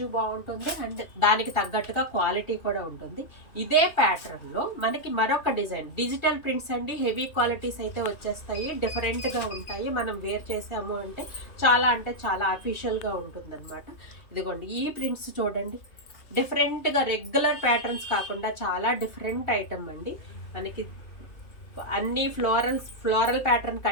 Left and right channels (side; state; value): right; late; 2.7 ms